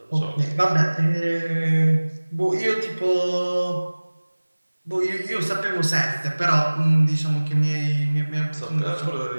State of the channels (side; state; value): both; inverted; correlation -1.00